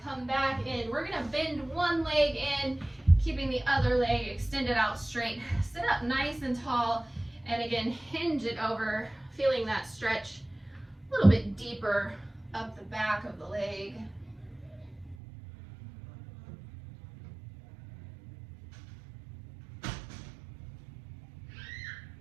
come back in. We're going to bend one leg in, keeping the other leg extended out straight. Sit up nice and tall, and again, hinge it over, feeling that stretch a little bit deeper up the back of the leg.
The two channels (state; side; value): drops out; left; at 15.2 s